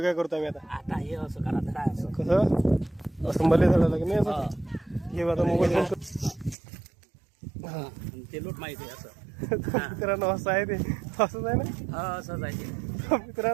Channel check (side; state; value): left; drops out; at 6.6 s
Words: करतो आम्ही. आता हे असं करा तर काय असं कसं असं मला झालं की नाही असं हे आता मोबाईल ते लोट माहिती आहे असं. मित्रांनो असं आहे ते, असंच आहे ना. असंच आहे ते